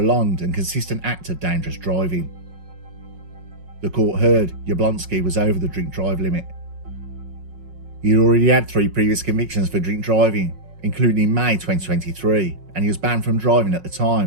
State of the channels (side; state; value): left; late; 5.4 ms